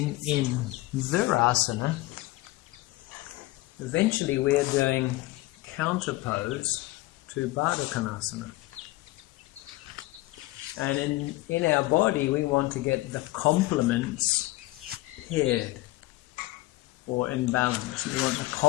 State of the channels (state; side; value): quieter; right; 19.4 dB